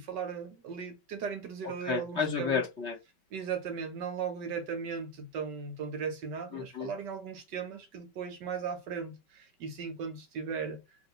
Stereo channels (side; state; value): left; late; 5.2 ms